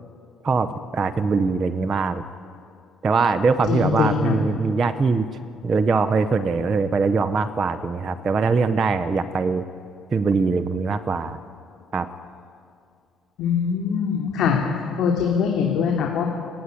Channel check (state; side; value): normal; both; correlation 0.72